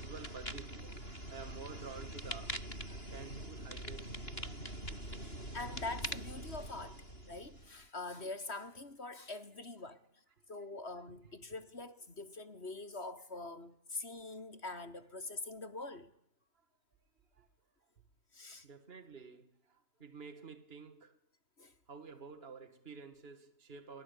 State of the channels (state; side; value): late; right; 3.1 ms